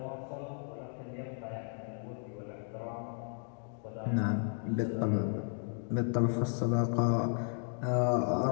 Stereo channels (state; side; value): silent; right; 55 dB below the other